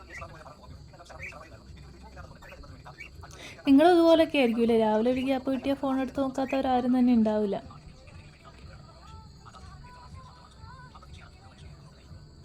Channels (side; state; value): both; identical; correlation 1.00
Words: നിങ്ങളും ഇതുപോലൊക്കെ ആയിരിക്കുമല്ലേ? രാവിലെ ഒരു ഗ്യാപ്പ് കിട്ടിയ ഫോൺ എടുത്ത് നോക്കാത്തവരാരും തന്നെ ഉണ്ടാവില്ല.